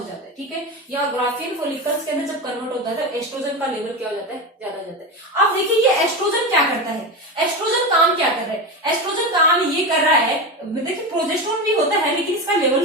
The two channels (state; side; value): normal; both; correlation 0.19